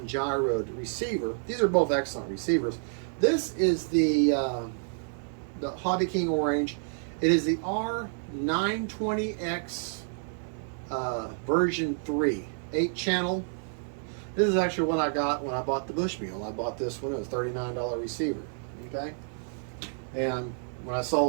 receiver. These are both excellent receivers. This is the Hobby King Orange. It is the R920X version 3, 8-channel. This is actually what I got when I bought the Bushmule. I bought this one. It was a $39 receiver. Okay, and when I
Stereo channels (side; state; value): left; silent; digital silence